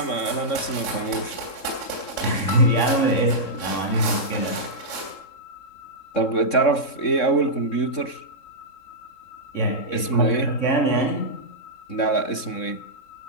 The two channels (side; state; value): right; late; 3.6 ms